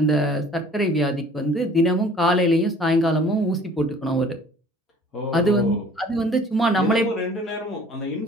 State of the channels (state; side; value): normal; both; correlation 0.51